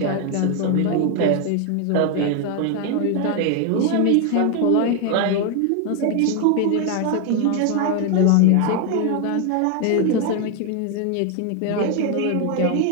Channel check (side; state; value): both; different; correlation 0.01